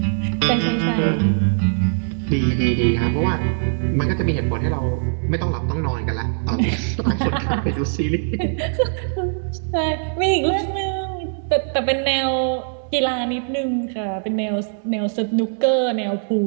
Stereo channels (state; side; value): silent; left; digital silence